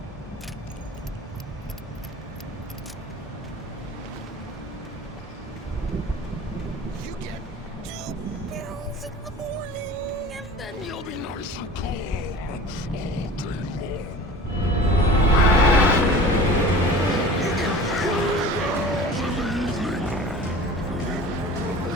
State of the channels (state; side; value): normal; both; correlation 0.40